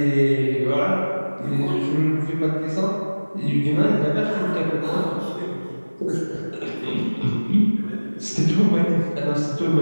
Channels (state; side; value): inverted; both; correlation -1.00